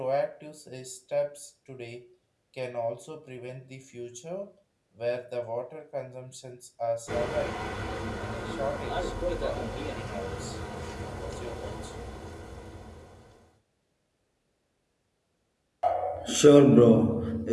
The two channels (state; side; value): identical; both; correlation 1.00